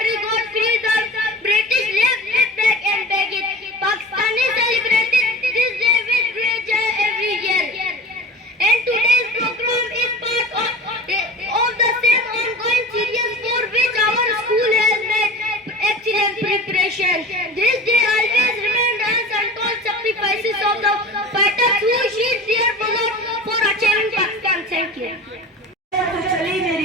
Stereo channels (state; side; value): normal; both; correlation 0.35